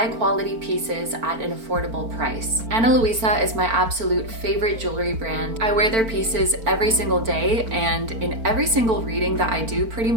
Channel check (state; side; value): late; left; 4.4 ms